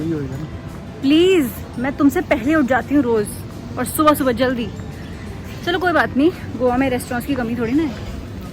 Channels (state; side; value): identical; both; correlation 1.00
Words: होगा ना. प्लीज मैं तुमसे पहले उठ जाती हूँ रोज और सुबह जल्दी. चलो कोई बात नहीं. गोवा में रेस्टोरेंट्स की कमी थोड़ी ना है.